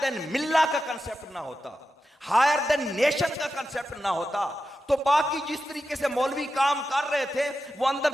मिल्ला का कंसेप्ट ना होता, हायर देन नेशन का कंसेप्ट ना होता, तो बाकी जिस तरीके से मौलवी काम कर रहे थे वो अंदर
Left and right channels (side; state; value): both; normal; correlation 0.90